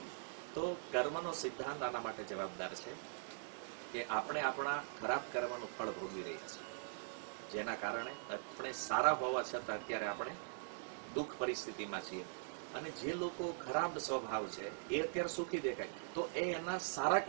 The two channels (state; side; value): silent; left; digital silence